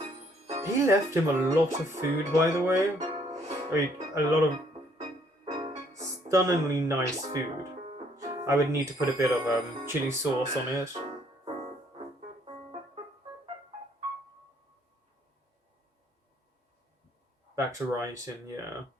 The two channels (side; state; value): both; normal; correlation 0.65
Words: He left him a lot of food, by the way. I mean, a lot of stunningly nice food. I would need to put a bit of chili sauce on it. Back to writing, yeah.